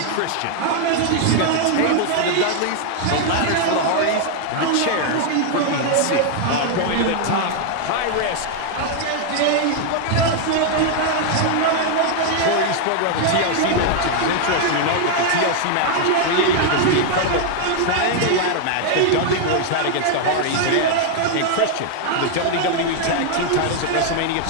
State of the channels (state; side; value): different; both; correlation 0.00